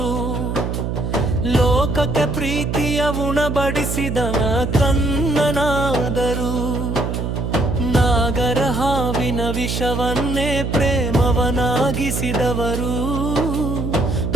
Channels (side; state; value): right; noise; hum, 2 dB below the sound